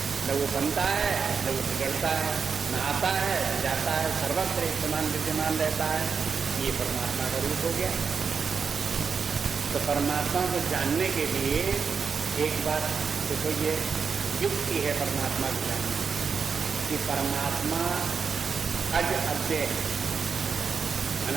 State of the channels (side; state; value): left; quieter; 5.8 dB